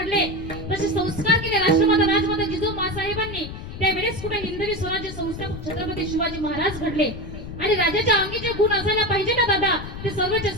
तसे संस्कार केले राष्ट्रमाता राजमाता जिजाऊ मासाहेबांनी. त्यावेळेस कुठे हिंदवी स्वराज्य संस्थापक छत्रपती शिवाजी महाराज घडले. आणि राजाच्या अंगी जे गुण असायला पाहिजे ना दादा, ते सर्वचे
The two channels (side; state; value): left; noise; rumble, 10 dB below the sound